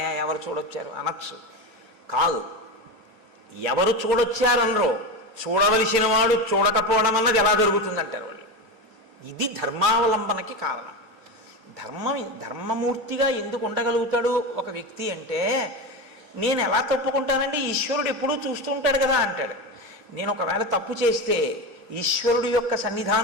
ఎవరు చూడొచ్చారు అనొచ్చు. కాదు, ఎవరు చూడొచ్చారనరో, చూడవలసిన వాడు చూడకపోవడం అన్నది ఎలా జరుగుతుందంటారు వాళ్ళు. ఇది ధర్మావలంబనకి కారణం. ధర్మమూర్తిగా ఎందుకు ఉండగలుగుతాడు ఒక వ్యక్తి అంటే, నేను ఎలా తప్పుకుంటానండి, ఈశ్వరుడు ఎప్పుడూ చూస్తూ ఉంటాడు కదా అంటాడు. నేను ఒకవేళ తప్పు చేస్తే ఈశ్వరుడు యొక్క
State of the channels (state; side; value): normal; both; correlation 0.20